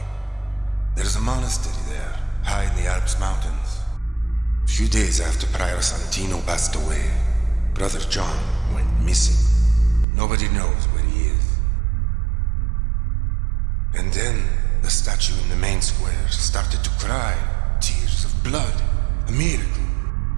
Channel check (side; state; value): left; drops out; at 10.1 s